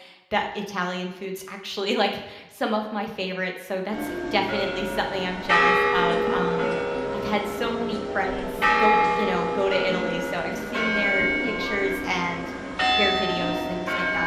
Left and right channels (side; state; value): both; identical; correlation 1.00